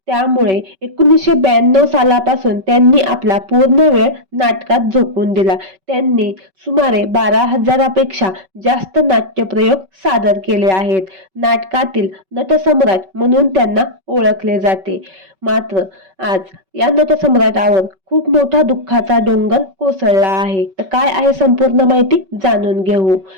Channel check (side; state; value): left; late; 5.3 ms